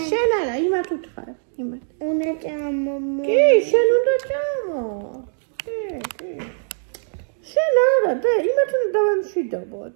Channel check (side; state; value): left; silent; digital silence